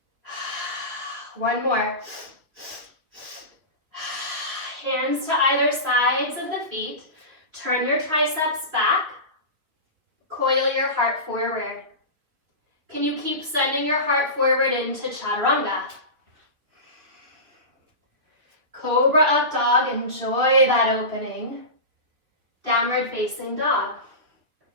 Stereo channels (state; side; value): late; left; 3.1 ms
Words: 1 more. Hands to either sides of the feet. Turn your triceps back. Coil your heart forward. Can you keep sending your heart forward into Chaturanga? Cobra up dog, enjoy that opening. Downward facing dog.